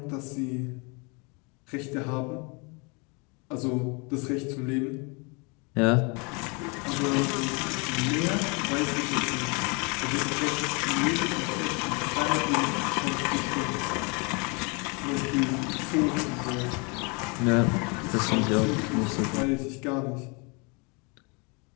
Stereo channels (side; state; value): right; quieter; 31.4 dB